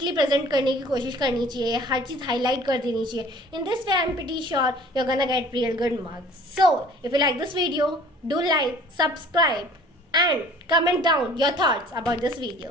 प्रेजेंट करने की कोशिश करनी चाहिए, हर चीज़ हाईलाइट कर देनी चाहिए। In this way I am pretty sure you are gonna get real good marks. So if you like this video, do like, subscribe and comment down your thoughts about this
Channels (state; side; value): normal; both; correlation 0.49